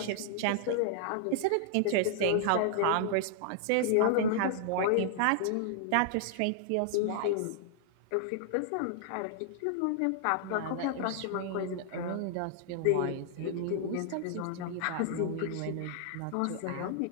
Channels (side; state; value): both; different; correlation -0.01